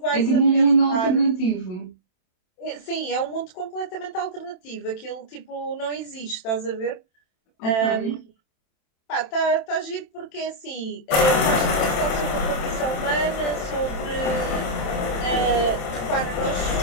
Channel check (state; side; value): late; right; 27 ms